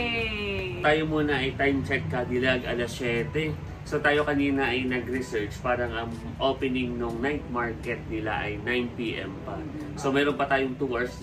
Tayo muna ay time check kadilag, alas 7. So tayo kanina ay nag-research, parang ang opening ng night market nila ay 9 PM pa. So meron pa tayong 2 hours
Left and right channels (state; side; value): identical; both; correlation 1.00